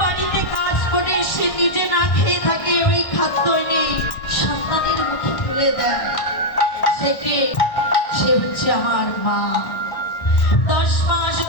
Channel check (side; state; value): right; late; 1.1 ms